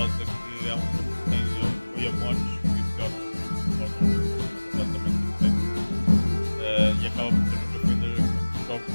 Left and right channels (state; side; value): inverted; both; correlation -1.00